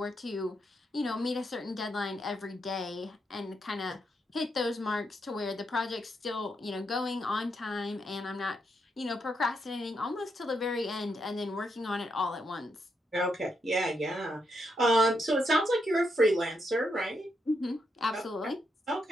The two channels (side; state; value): both; normal; correlation 0.81